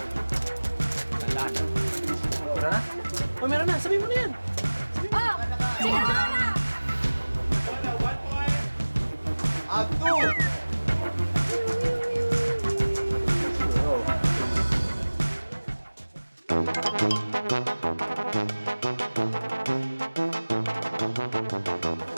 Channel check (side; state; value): both; inverted; correlation -1.00